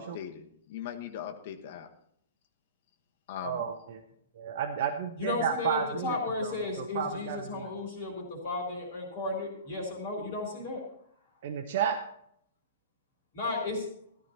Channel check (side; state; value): both; inverted; correlation -0.35